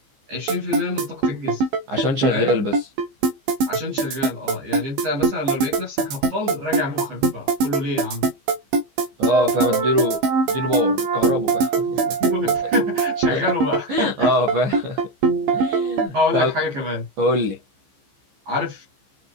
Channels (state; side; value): late; left; 15 ms